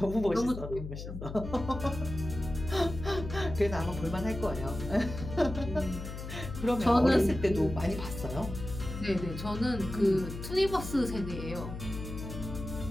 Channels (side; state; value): left; noise; hum, 8 dB below the sound